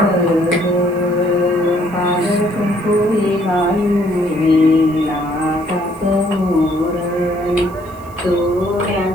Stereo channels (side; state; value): right; noise; hiss, 26 dB below the sound